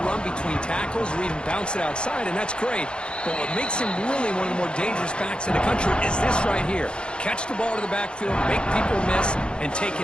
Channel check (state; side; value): late; right; 0.053 ms